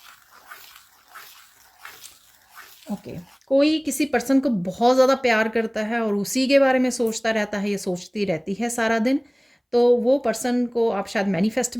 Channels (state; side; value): identical; both; correlation 1.00